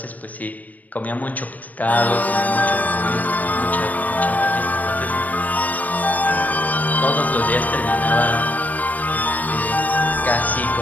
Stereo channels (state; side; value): late; right; 0.076 ms